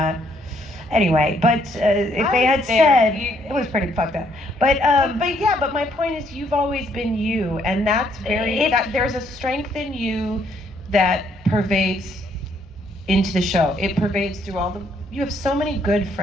Anyway, but if they had said, it was pretty fucked up. But my point is, you've always been you, and that's there's a strength in you that pervades into the show. It pervades through you have so many good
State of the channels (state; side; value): normal; both; correlation 0.69